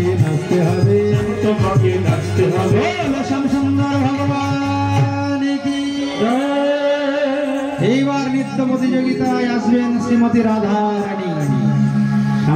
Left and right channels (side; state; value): both; identical; correlation 1.00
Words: নাচতে হবে, তোমাকে নাচতে হবে। শ্যাম সুন্দর ভগবান কি। এইবার নৃত্য প্রতিযোগিতায় আসবেন শ্রীমতী রাধা রানী।